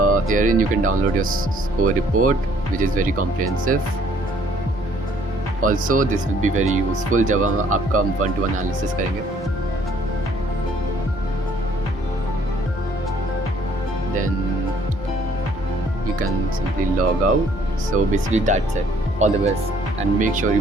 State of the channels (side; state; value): both; normal; correlation 0.62